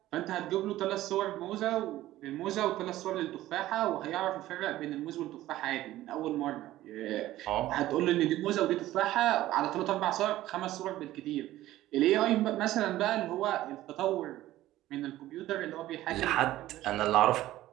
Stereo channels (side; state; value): left; quieter; 15.1 dB